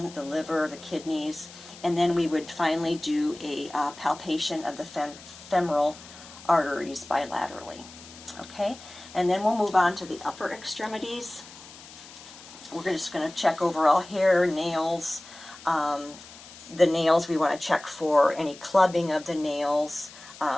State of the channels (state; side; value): noise; left; hiss, 18 dB below the sound